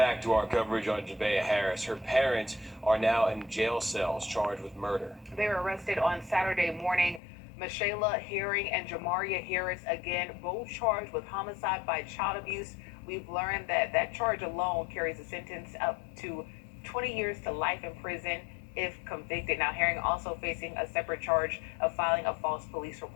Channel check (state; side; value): drops out; right; at 7.2 s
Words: to our coverage on Javeya Harris. Her parents are now in jail cells charged with murder. They were arrested on Saturday morning. Michaela Herring and Jamaria Harris, again, both charged with homicide by child abuse. We've learned that that charge alone carries a sentence up to 20 years to life in prison if convicted. Now, Herring also facing a separate charge of filing a false police